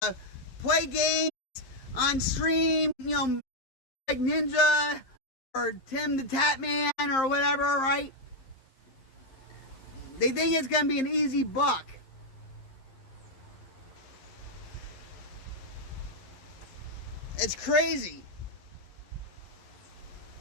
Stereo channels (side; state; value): right; late; 11 ms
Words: play games on stream, like Ninja or Tim the Tatman or whatever, right? They think it's going to be an easy buck. It's crazy.